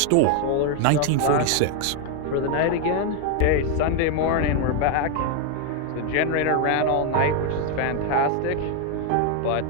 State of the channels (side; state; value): both; different; correlation 0.01